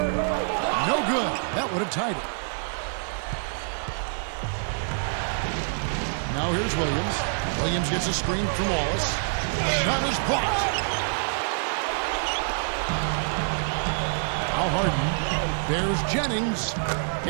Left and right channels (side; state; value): left; silent; digital silence